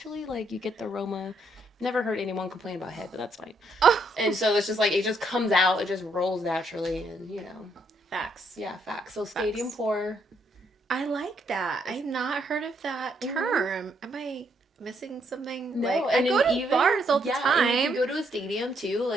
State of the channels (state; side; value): normal; both; correlation 0.73